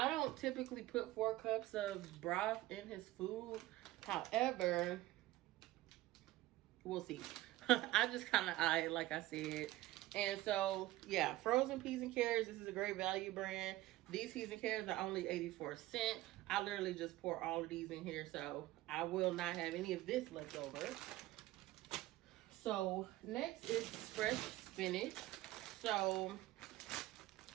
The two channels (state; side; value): quieter; left; 16.9 dB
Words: don't typically put 4 cups of broth in his food. However, we'll see. I just kind of eye it, like I said. And so, yeah, frozen peas and carrots. This is a great value brand. These peas and carrots are only 84 cents. I literally just pour all of these in here, so I will not have any of this left over. So next is fresh spinach. So